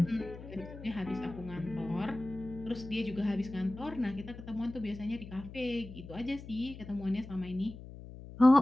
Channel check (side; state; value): left; noise; hum, 14 dB below the sound